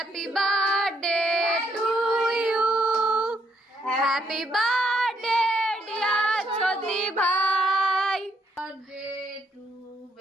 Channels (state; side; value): normal; both; correlation 0.73